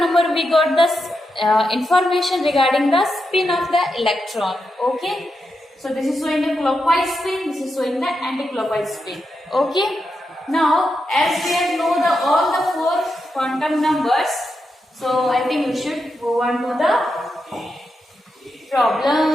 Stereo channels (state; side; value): normal; both; correlation 0.86